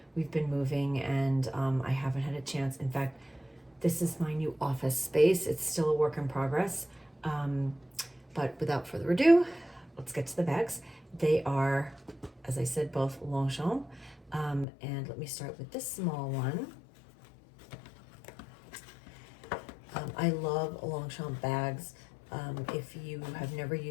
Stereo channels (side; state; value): right; drops out; at 14.7 s